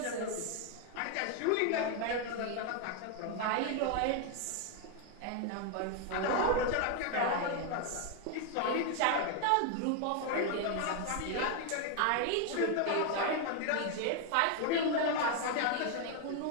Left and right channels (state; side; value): different; both; correlation 0.01